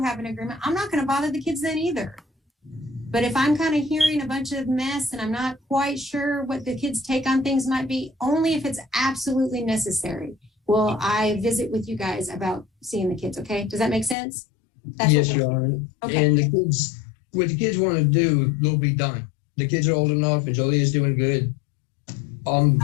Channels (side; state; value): right; drops out; at 14.2 s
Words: have an agreement, I'm not going to bother the kids then either. But if I'm kind of hearing a bunch of mess and I'm not quite sure what the kids' take on things might be, only if it's absolutely necessary, will I visit with you guys about seeing the kids, okay? Does that make sense? Yes, Your Honor. Okay. And the kids, what the kids want to do will be done. The kids are old enough and Jolie is doing good. For